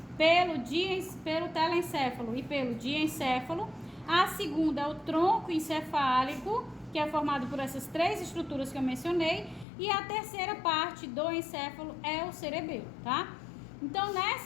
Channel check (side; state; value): right; drops out; at 9.7 s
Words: pelo telencéfalo e pelo diencéfalo. A segunda é o tronco encefálico, que é formado por essas 3 estruturas que eu mencionei. E a terceira parte do encéfalo é o cerebelo, tá? Então,